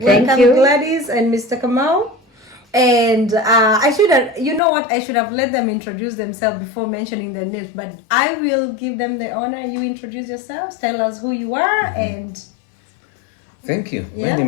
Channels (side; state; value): right; drops out; at 4.6 s